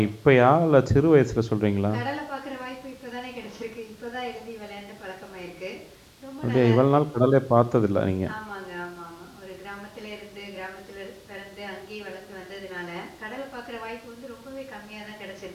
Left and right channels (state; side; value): identical; both; correlation 1.00